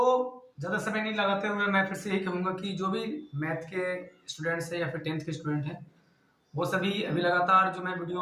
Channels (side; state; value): both; identical; correlation 1.00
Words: ज़्यादा समय नहीं लगाते हुए मैं फिर से यही कहूँगा कि जो भी मैथ के स्टूडेंट्स हैं या फिर टेंथ के स्टूडेंट हैं, वो सभी अभी लगातार जो मैं